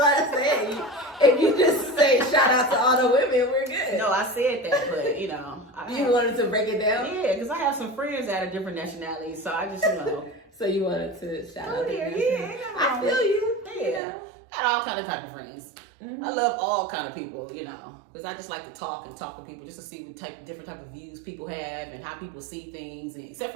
I said. If you just say shout out to all the women, we're good. No, I said that, but, you know. You wanted to break it down? Yeah, because I have some friends that are different nationalities, so I just, you know. So you wanted to shout out to them. Yeah, I feel you. Yeah. You know? I got all kind of type of friends. Mhm. I love all kind of people, you know, because I just like to talk to people just to see what different type of views people have and how people see things. And except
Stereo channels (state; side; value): drops out; left; at 14.0 s